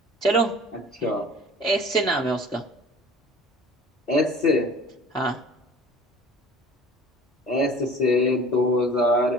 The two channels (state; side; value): normal; both; correlation 0.45